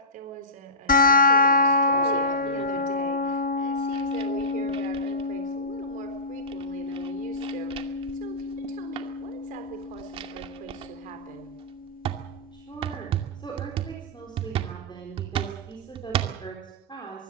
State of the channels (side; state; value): both; normal; correlation -0.19